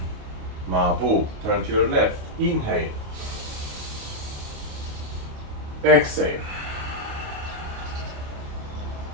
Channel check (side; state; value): left; late; 28 ms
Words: Mabu, turn to your left, inhale. Exhale.